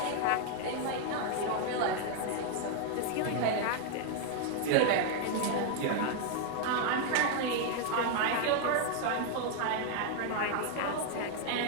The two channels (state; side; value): different; both; correlation 0.00